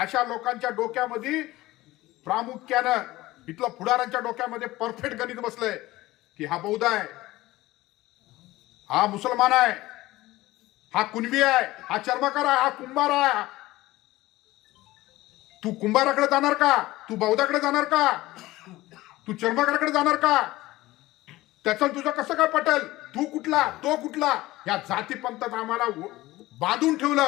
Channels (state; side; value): quieter; right; 18.0 dB